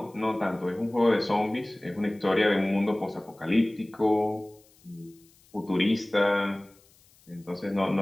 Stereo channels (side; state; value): left; noise; hiss, 30 dB below the sound